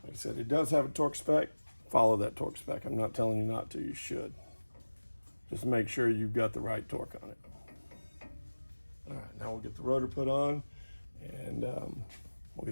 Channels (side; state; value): both; inverted; correlation -1.00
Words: I said, it does have a torque spec. Follow that torque spec. I'm not telling you not to. You should. Just make sure you've got the right torque on it. All right, now we'll get the rotor put on, and we'll